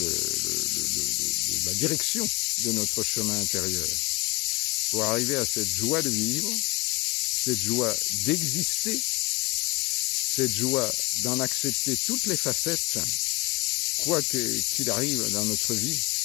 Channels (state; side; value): quieter; right; 24.6 dB